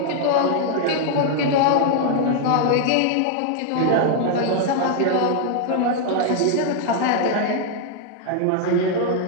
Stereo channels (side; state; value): both; different; correlation 0.00